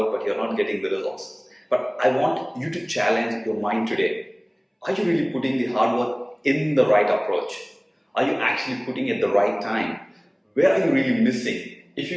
but you're not getting the results. But I want you to challenge your mind today. Are you really putting the hard work in the right approach? Are you actually putting it at the right time? Where are you really missing? If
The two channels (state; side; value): identical; both; correlation 1.00